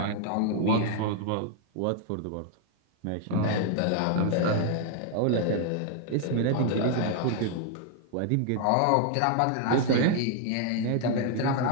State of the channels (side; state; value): both; different; correlation 0.00